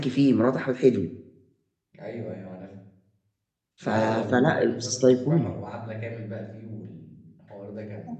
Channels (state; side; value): identical; both; correlation 1.00